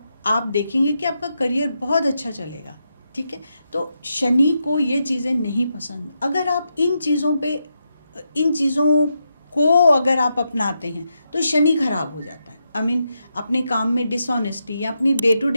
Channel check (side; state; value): both; inverted; correlation -0.84